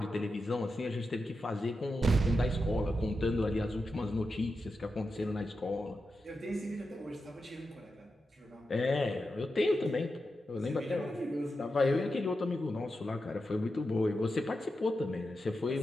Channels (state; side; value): normal; both; correlation 0.89